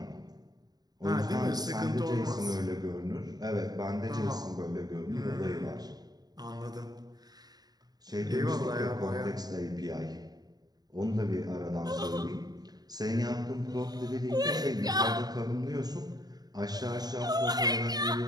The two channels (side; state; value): left; late; 0.19 ms